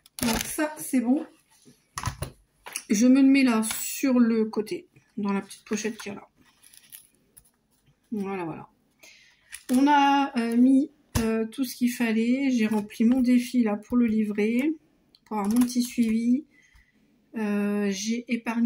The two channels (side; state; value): both; identical; correlation 1.00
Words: Donc ça, c'est bon. Je me le mets là, sur le côté, dans la petite pochette qu'il y a là. Voilà, voilà. On a mis tout ce qu'il fallait. J'ai rempli mon défi là pour le livret, pour avoir mon petit suivi. J'ai